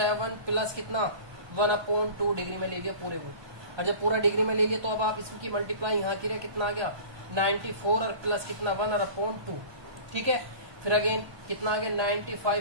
प्लस कितना 1 अपॉन 2 डिग्री में ले लिया पूरे को, और जब पूरा डिग्री में ले लिया तो अब आप इसकी मल्टीप्लाई यहाँ की कितना आ गया 94 और प्लस कितना 1 और अपॉन 2, ठीक है। फिर अगेन कितना आ गया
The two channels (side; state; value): left; late; 1.2 ms